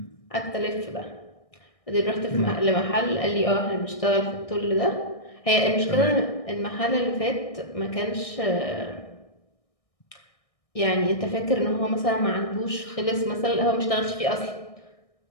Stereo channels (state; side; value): late; right; 1.6 ms